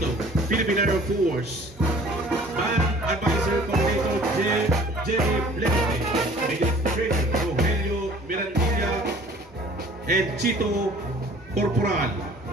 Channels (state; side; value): normal; both; correlation 0.51